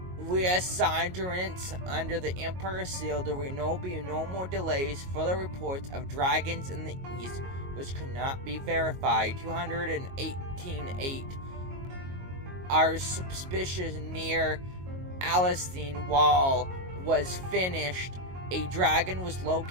reassurance under the Emperor seal. There will be no more delays. Further reports of dragons in the east, which could not be verified. 218.8 are suspicious near Alcine wall was finished. A dragon was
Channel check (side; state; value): left; late; 22 ms